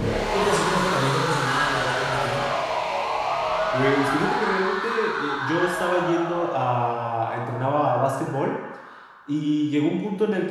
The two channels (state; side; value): identical; both; correlation 1.00